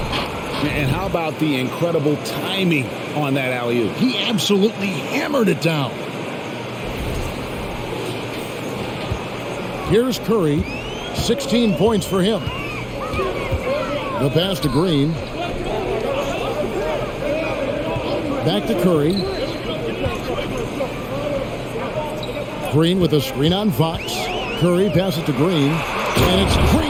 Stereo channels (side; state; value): both; identical; correlation 1.00